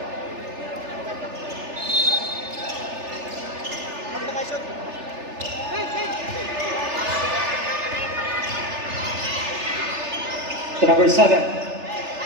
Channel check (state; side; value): late; left; 3.4 ms